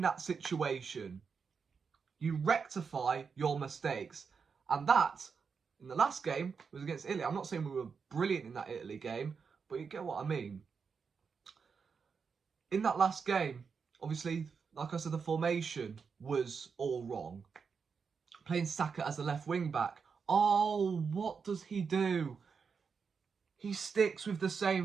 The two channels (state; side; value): quieter; left; 5.7 dB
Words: that situation? You rectify your mistakes. And that, in the last game, was against Italy. I'm not saying we were brilliant in that Italy game, but you get what I mean. In that last game, obviously, like I said, the formation was all wrong. Playing Saka as a left wing back. Oh, what does he do? He sticks with the